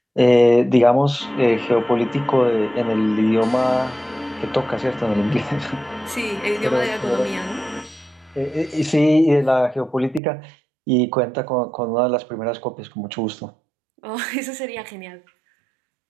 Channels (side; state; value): left; drops out; at 10.2 s